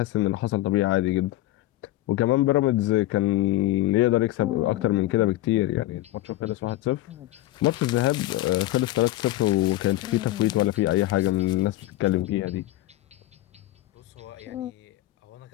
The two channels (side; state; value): right; quieter; 16.1 dB